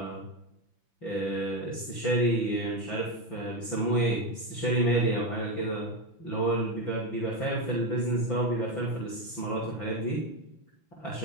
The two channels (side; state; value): right; late; 6.0 ms